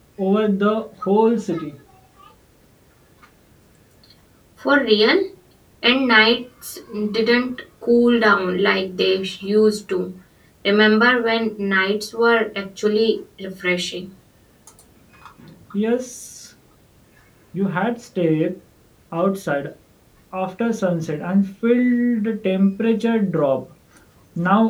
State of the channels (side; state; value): both; identical; correlation 1.00